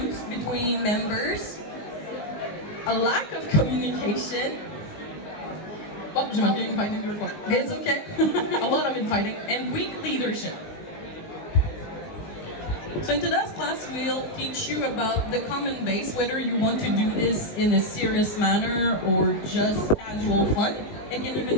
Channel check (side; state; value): right; late; 19 ms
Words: between members, a lack of communication. Oh, j'ai manqué infighting before. It's okay. A lot of infighting and weak leadership. So in today's class, we'll teach you about the common base, whether you want to do this in a serious manner or just casual fun. It can even